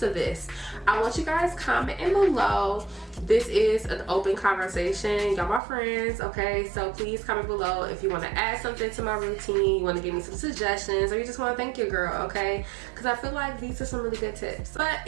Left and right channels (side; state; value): left; drops out; at 5.6 s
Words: of this. I want you guys commenting below. This is an open conversation, y'all my friends, okay? So please comment below if you want to add something to my routine, you want to give me some suggestions, or you just want to thank your girl, okay? Because I feel like these are some really good tips. But